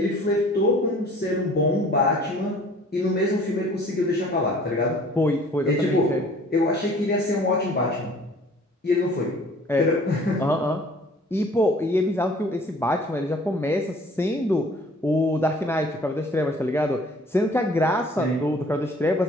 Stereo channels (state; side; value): normal; both; correlation 0.51